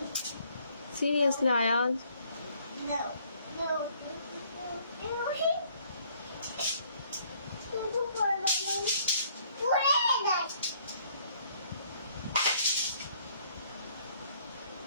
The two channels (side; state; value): both; inverted; correlation -0.63